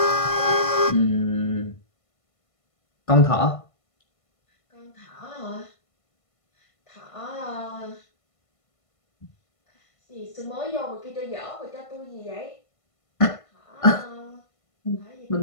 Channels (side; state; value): right; late; 1.5 ms